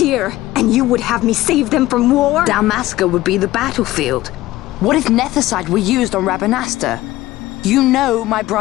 and you would have me save them from war? Dalmasca would be the battlefield. What if nethicite were used on Rabanasta? You know my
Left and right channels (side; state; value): right; quieter; 16.6 dB